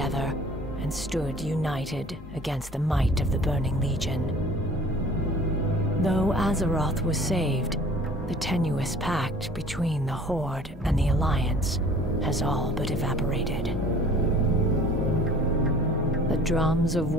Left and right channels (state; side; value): normal; both; correlation 0.48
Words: and stood united against the might of the Burning Legion. Though Azeroth was saved, the tenuous pact between the Horde and the Alliance has all but evaporated. The drums of